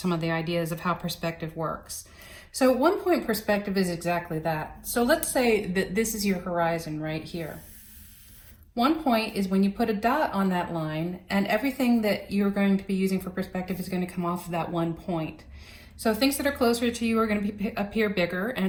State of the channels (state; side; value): identical; both; correlation 1.00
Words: of the ideas of how perspective works. So 1-point perspective is exactly that. So let's say that this is your horizon right here. 1 point is when you put a dot on that line and everything that you're going to be using for perspective is going to come off of that 1 point. So things that are closer to you are going to appear bigger,